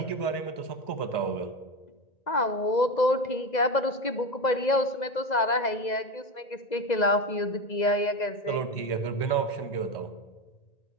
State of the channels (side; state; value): right; late; 2.0 ms